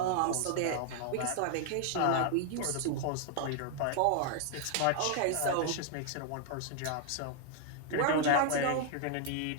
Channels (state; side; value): different; both; correlation 0.00